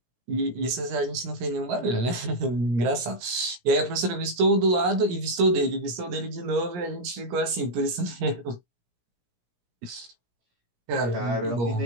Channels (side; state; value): left; late; 17 ms